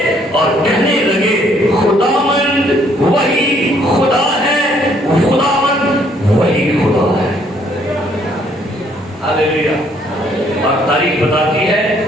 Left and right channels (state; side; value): normal; both; correlation 0.65